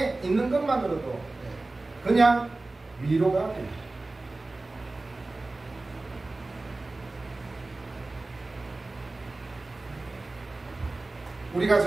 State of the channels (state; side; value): quieter; left; 3.1 dB